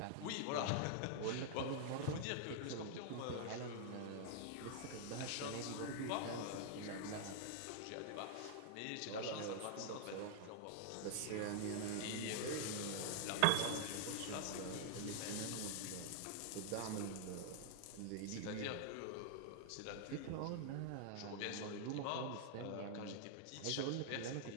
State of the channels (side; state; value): both; different; correlation 0.00